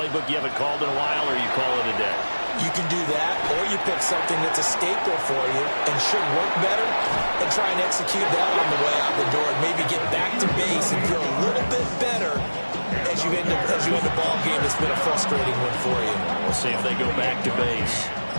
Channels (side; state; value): both; inverted; correlation -1.00